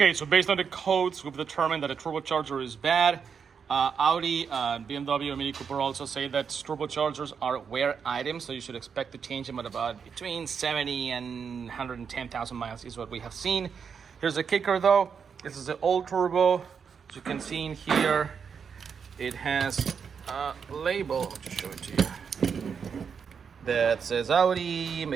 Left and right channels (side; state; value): left; quieter; 6.5 dB